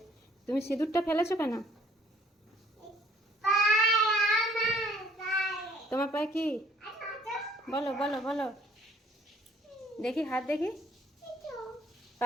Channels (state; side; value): normal; both; correlation 0.60